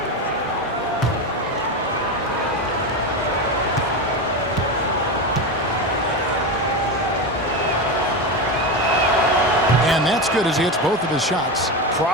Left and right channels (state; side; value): normal; both; correlation 0.17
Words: And that's good as he hits both of his shots.